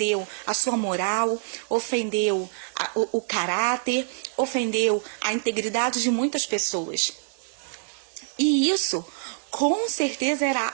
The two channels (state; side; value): silent; left; digital silence